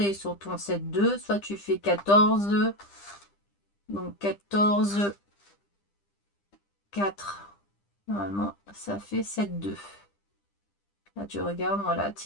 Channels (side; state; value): right; late; 10 ms